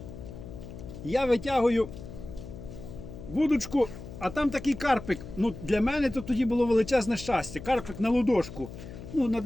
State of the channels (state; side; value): noise; left; hum, 12 dB below the sound